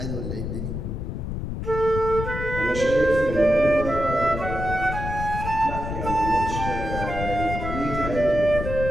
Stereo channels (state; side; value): noise; left; rumble, 5 dB below the sound